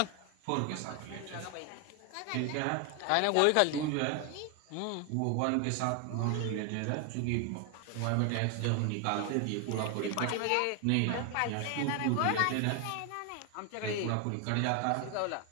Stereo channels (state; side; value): different; both; correlation 0.01